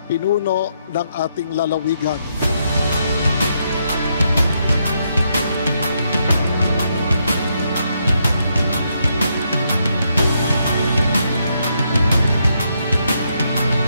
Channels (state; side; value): inverted; both; correlation -0.78